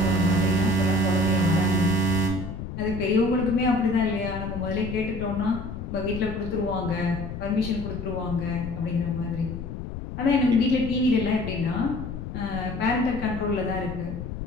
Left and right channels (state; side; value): noise; left; rumble, 8 dB below the sound